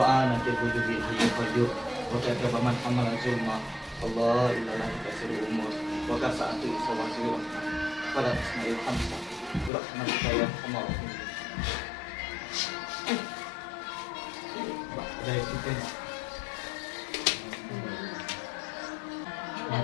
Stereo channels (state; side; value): drops out; right; at 9.7 s